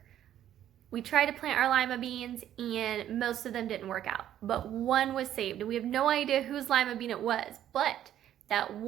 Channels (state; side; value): quieter; left; 11.3 dB